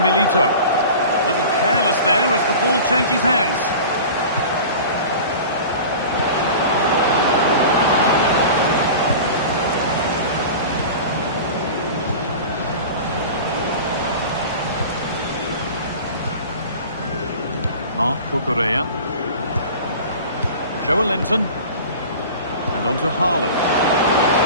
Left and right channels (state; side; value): inverted; both; correlation -0.37